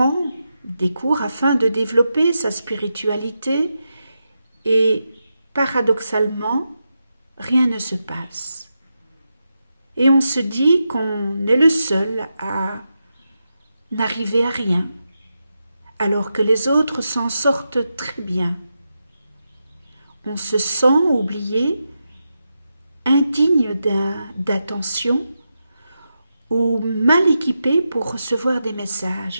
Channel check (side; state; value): both; inverted; correlation -0.88